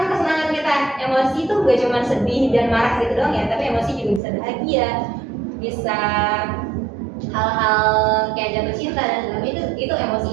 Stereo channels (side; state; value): left; drops out; at 4.2 s